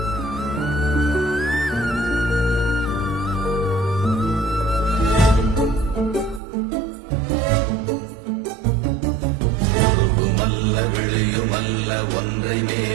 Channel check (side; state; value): left; drops out; at 6.4 s